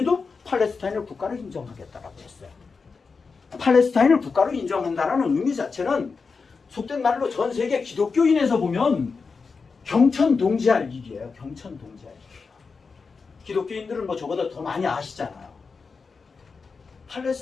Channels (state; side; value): quieter; right; 4.8 dB